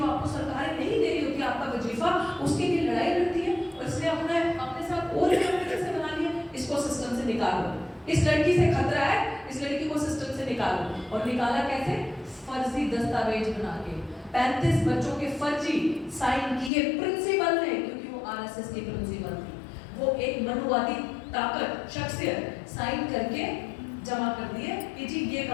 आपको सरकारें नहीं दे रही होती आपका वजीफा, उसके लिए लड़ाई लड़ती है। और इसलिए अपने साथ और कैसे बना लिया, इसको सिस्टम से निकालो। इस लड़की से खतरा है, इस लड़की को सिस्टम से निकालो। और निकाला कैसे? फर्जी दस्तावेज बना के 35 बच्चों के फर्जी साइन किए प्रिंसिपल ने, क्योंकि वो आरएसएस की प्रिंसिपल थी। वो एक मनुवादी ताकत शख्सियत साइन करके जमा कर दिए कि जी ये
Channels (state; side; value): drops out; right; at 16.7 s